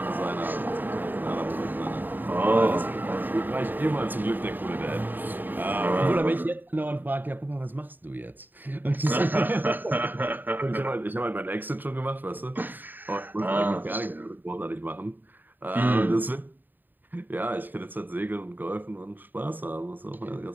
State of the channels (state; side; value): late; left; 0.090 ms